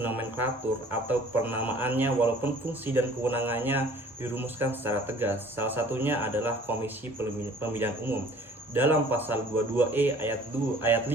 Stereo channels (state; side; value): normal; both; correlation 0.51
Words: atau penamaannya, walaupun fungsi dan kewenangannya dirumuskan secara tegas. Salah satunya adalah Komisi Pemilihan Umum. Dalam pasal 22E ayat